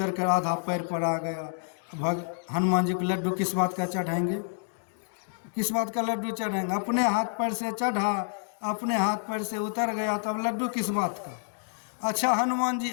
कर आधा पैर पर आ गया। हनुमान जी को लड्डू किस बात का चढ़ाएंगे, किस बात का लड्डू चढ़ाएंगे? अपने हाथ पैर से चढ़ा, अपने हाथ पैर से उतर गया, तब लड्डू किस बात का? अच्छा हनुमान जी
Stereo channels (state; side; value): silent; right; digital silence